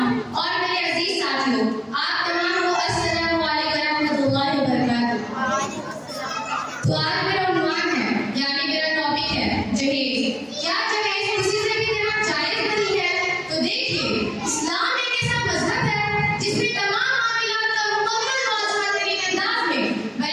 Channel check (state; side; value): identical; both; correlation 1.00